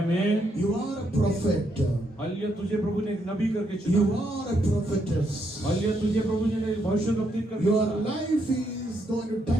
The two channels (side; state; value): both; normal; correlation 0.77